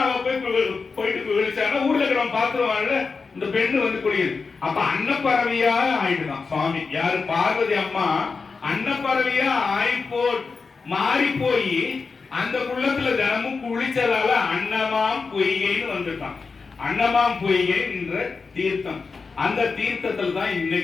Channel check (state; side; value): quieter; right; 4.7 dB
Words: போயிட்டு விழிச்சானா ஊர்ல இருக்கிறவன் பாத்துருவான்ல, இந்த பெண்ணு வந்து குளியுது. அப்ப அன்னப்பறவையா ஆயிடுதான் சுவாமி. யாரு? பார்வதி அம்மா அன்னப்பறவையா மாறி போய் அந்த குள்ளத்துல தினமும் குளிச்சதால அன்னமாம் பொய்கைன்னு வந்துட்டான். அன்னமாம் பொய்கை என்ற தீர்த்தம், அந்த தீர்த்தத்தில் தான்